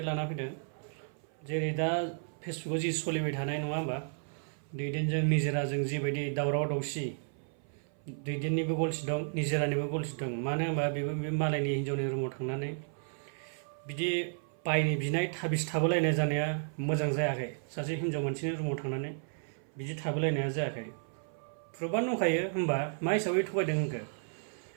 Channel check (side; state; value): left; silent; 56 dB below the other